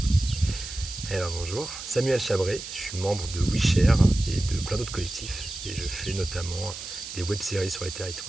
Eh ben, bonjour. Samuel Chabré. Je suis membre de WeShare et de plein d'autres collectifs. Et je fais notamment des web-séries sur les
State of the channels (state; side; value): noise; right; hiss, 10 dB below the sound